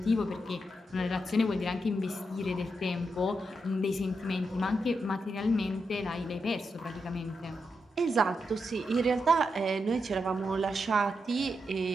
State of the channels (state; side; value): normal; both; correlation 0.85